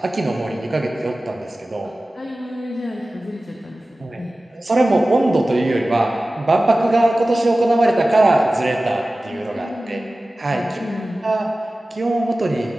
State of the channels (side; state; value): both; normal; correlation 0.96